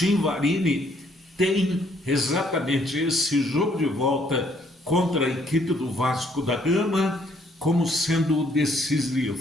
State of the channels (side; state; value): both; normal; correlation 0.67